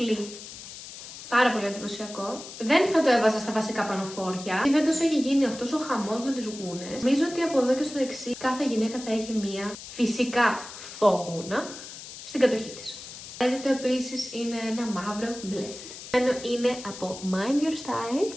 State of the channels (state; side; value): noise; left; hiss, 13 dB below the sound